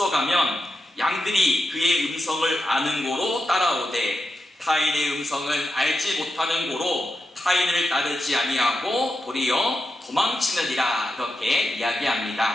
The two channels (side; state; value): both; normal; correlation 0.88